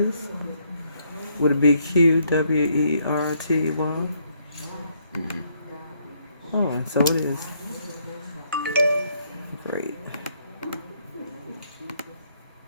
Would it be QWERTY? Oh, and so it is. Great.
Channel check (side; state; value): both; inverted; correlation -0.71